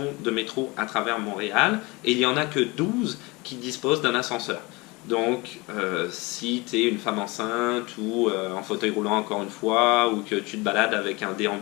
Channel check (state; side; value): quieter; right; 24.7 dB